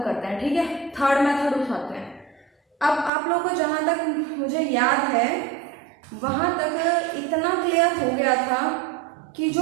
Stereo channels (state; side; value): drops out; left; at 3.1 s